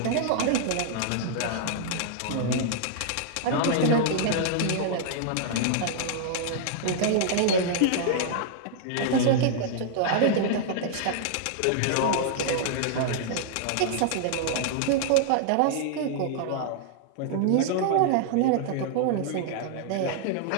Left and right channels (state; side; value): different; both; correlation -0.01